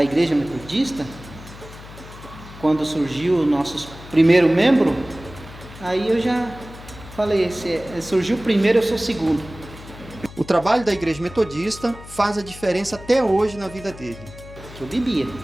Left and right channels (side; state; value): left; noise; hum, 17 dB below the sound